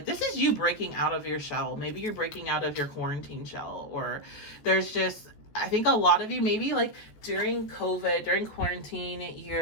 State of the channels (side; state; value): right; late; 14 ms